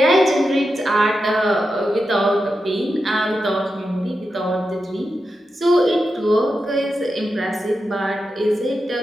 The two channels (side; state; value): both; normal; correlation 0.89